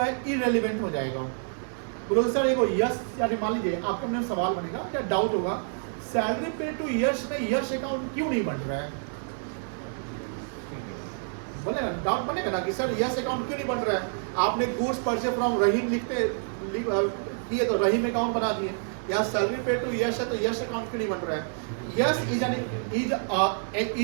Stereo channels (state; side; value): silent; left; digital silence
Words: इरेलीवेंट हो जाएगा। बोलो सर एक यश, यानी मान लीजिए आपके मन में सवाल बनेगा या डाउट होगा, सैलरी पेड टू यश में यश अकाउंट क्यों नहीं बन रहा है? बोलेगा, डाउट बनेगा ना कि सर यश अकाउंट क्यों नहीं बन रहा है? आपने गुड्स परचेज फ्रॉम रहीम किए तो रहीम अकाउंट बना दिए। यहाँ सैलरी पेड टू यश है तो यश अकाउंट क्यों नहीं बन रहा है? Yash